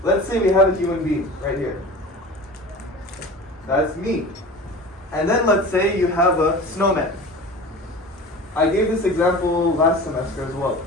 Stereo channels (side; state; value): both; normal; correlation 0.36